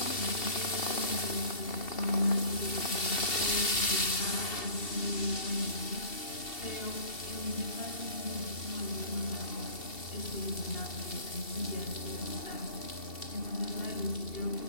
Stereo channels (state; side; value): late; right; 2.7 ms